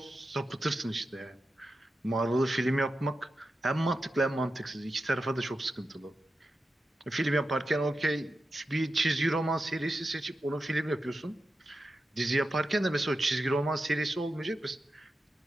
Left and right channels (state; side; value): normal; both; correlation 0.90